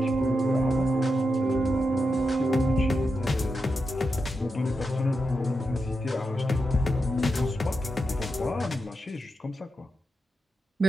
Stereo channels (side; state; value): both; normal; correlation 0.87